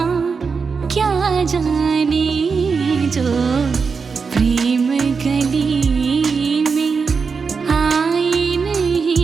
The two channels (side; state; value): left; quieter; 5.2 dB